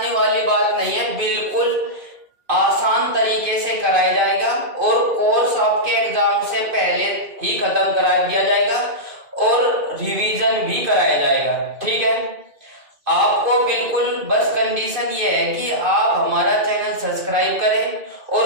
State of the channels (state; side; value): late; left; 2.5 ms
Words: वाली बात नहीं है, बिल्कुल आसान तरीके से कराया जाएगा और कोर्स आपके एग्जाम से पहले ही खत्म करा दिया जाएगा और रिवीजन भी कराया जाएगा। ठीक है, आपको बिल्कुल बस कंडीशन ये है कि आप हमारा चैनल सब्सक्राइब करें